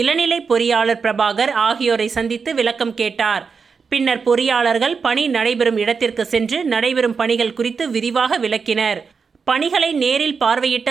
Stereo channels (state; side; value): quieter; left; 5.4 dB